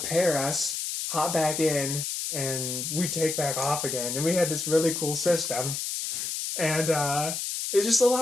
us, hop back in, and we take back off again. And we had this really cool system. And it's just a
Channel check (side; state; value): left; noise; hiss, 3 dB below the sound